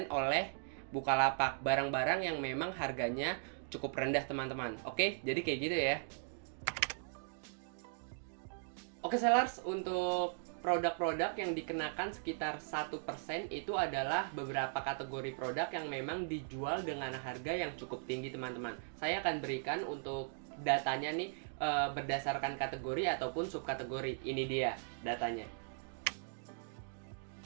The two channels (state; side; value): silent; left; digital silence